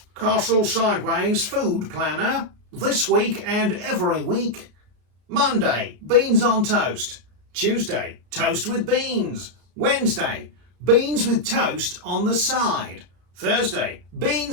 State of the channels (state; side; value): late; left; 33 ms